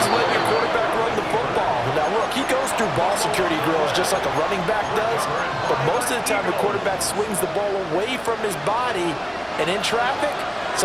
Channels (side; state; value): both; identical; correlation 1.00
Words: of letting your quarterback run the football. Now, look, he goes through ball security drills just like a running back does, but most of the time the quarterback swings the ball away from his body, and in traffic,